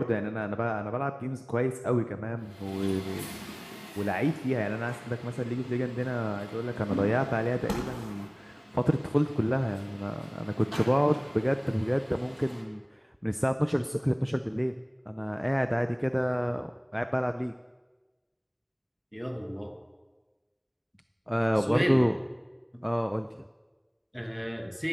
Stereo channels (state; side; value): identical; both; correlation 1.00